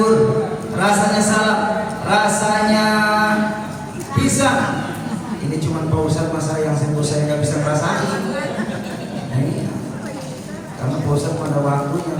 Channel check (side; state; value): both; identical; correlation 1.00